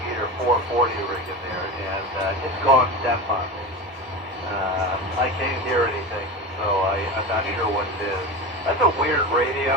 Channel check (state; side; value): normal; both; correlation 0.25